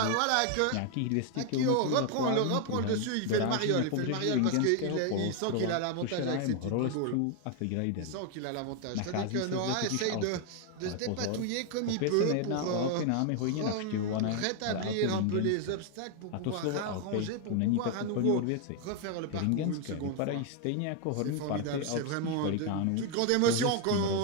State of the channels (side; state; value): both; different; correlation 0.01